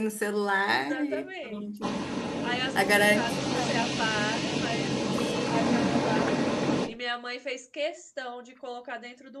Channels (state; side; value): identical; both; correlation 1.00